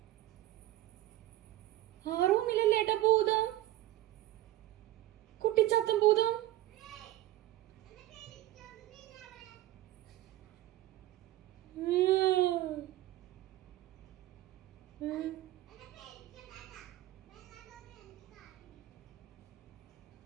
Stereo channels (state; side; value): quieter; left; 15.3 dB